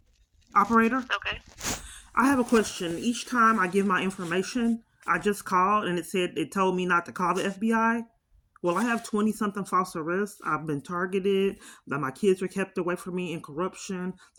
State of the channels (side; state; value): both; identical; correlation 1.00